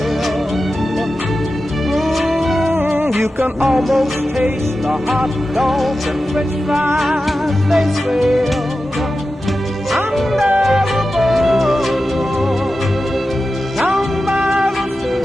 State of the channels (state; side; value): normal; both; correlation 0.92